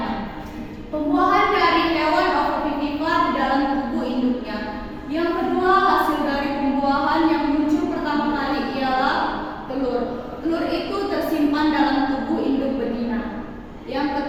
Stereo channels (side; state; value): both; identical; correlation 1.00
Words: Pembuahan dari hewan ovovivipar di dalam tubuh induknya. Yang kedua, hasil dari pembuahan yang muncul pertama kali ialah telur. Telur itu tersimpan dalam tubuh induk betina. Yang